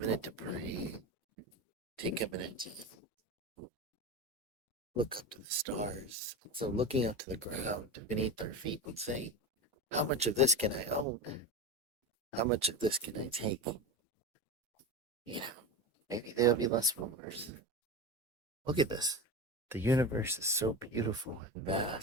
to pray, take a minute to look up to the stars. So looking up to the ground beneath our feet and saying, how much of this can I own? How much of this can I take? You know, maybe there'll be less wars. Look at this. The universe is so beautiful and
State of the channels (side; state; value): both; normal; correlation 0.23